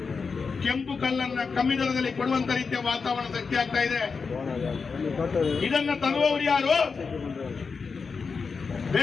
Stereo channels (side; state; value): right; quieter; 5.1 dB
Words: ಕೆಂಪು ಕಲ್ಲನ್ನ ಕಮ್ಮಿ ದರದಲ್ಲಿ ಕೊಡುವಂತ ರೀತಿಯ ವಾತಾವರಣ ಸೃಷ್ಟಿ ಆಗ್ತಾ ಇದೆ. ಇದನ್ನ ತರುವವರು ಯಾರು?